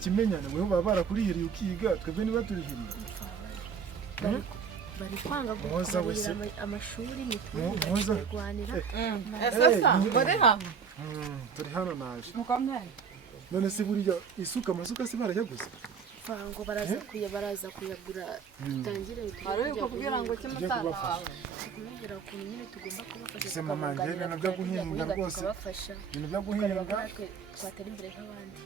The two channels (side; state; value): left; quieter; 6.5 dB